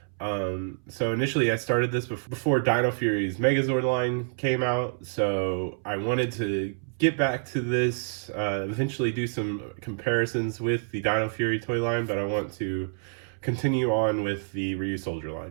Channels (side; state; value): left; silent; 60 dB below the other